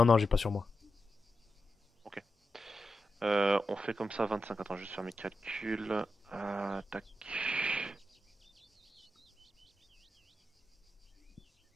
j'ai pas sur moi. On fait comme ça, 25. Attends, je vais juste faire mes calculs. Tac.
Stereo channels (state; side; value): normal; both; correlation 0.89